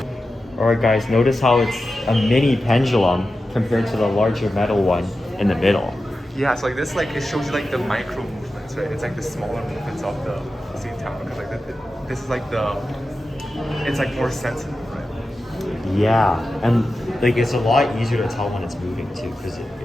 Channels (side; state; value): both; normal; correlation 0.92